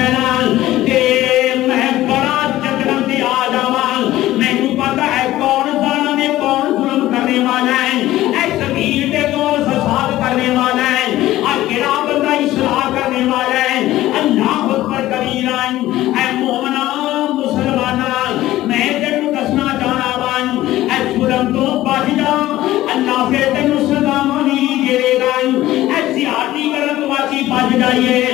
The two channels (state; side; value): quieter; right; 15.3 dB